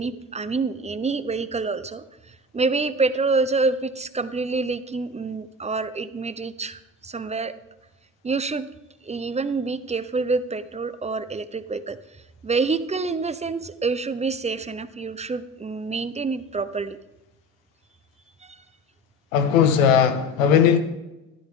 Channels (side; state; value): both; normal; correlation 0.32